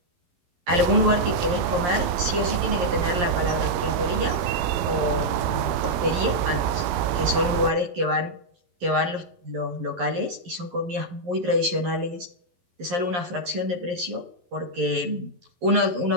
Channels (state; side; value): late; left; 11 ms